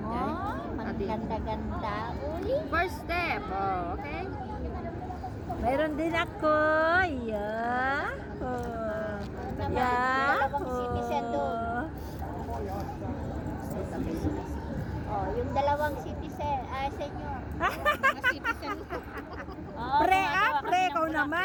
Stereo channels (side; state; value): both; identical; correlation 1.00